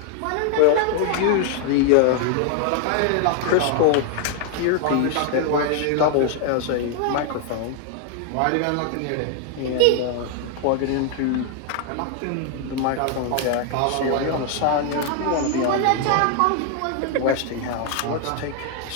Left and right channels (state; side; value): different; both; correlation 0.00